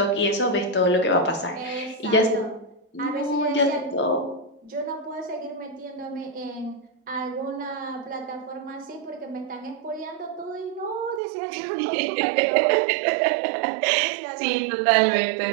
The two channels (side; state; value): left; drops out; at 11.2 s